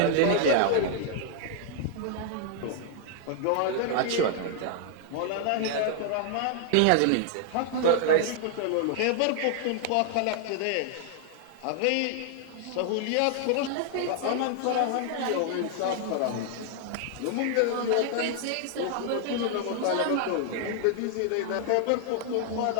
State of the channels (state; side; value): different; both; correlation 0.00